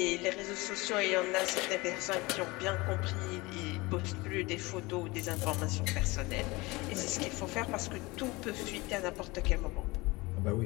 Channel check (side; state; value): right; quieter; 23.0 dB